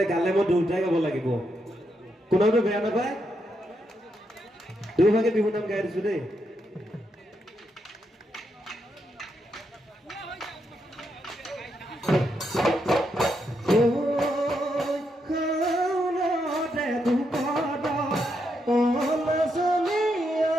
গালে মই দুয়োটাই গাব লাগিব, কোনোটো বেয়া নাপায়, দুয়োভাগে বিহু নাম গাই দিছোঁ দেই।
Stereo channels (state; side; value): normal; both; correlation 0.81